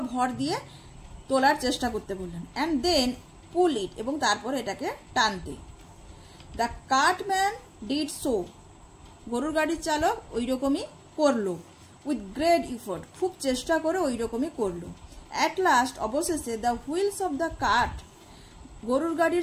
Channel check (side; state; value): both; identical; correlation 1.00